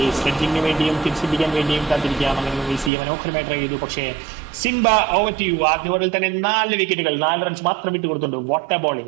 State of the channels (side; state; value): left; drops out; at 2.9 s